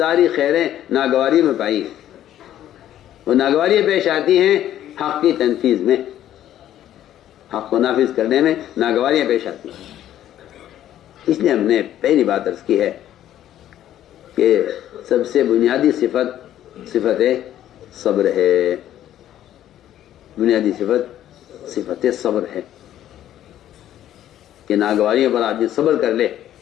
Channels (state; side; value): quieter; right; 12.0 dB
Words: خیریں ناگواری میں پائی ہیں. وہ ناگواریاں پیش آتی ہیں حق کی تنفیذ میں، حق کو نافذ کرنے میں ناگواریاں پیش آتی ہیں. اس لیے ہم نے پہلی بات عرض کی ہے کہ سب سے بنیادی صفت صبر ہے، بنیادی صفت صبر ہے کہ ناگواریوں پر آدمی صبر کر لے.